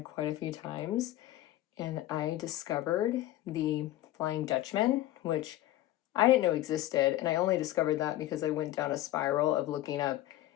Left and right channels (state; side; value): quieter; right; 14.8 dB